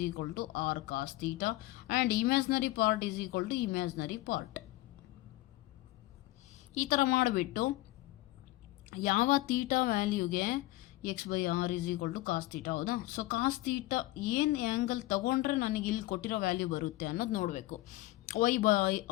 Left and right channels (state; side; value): quieter; right; 18.2 dB